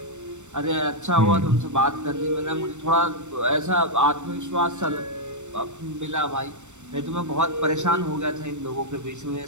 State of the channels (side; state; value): left; late; 0.84 ms